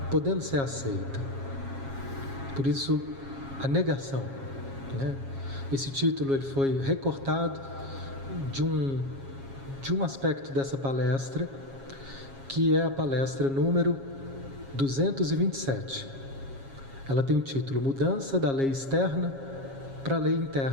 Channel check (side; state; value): left; late; 7.3 ms